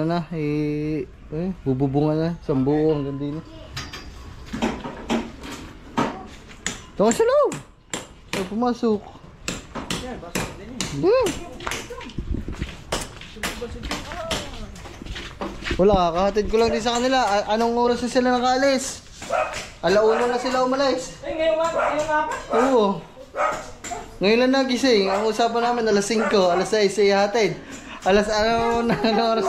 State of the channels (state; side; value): identical; both; correlation 1.00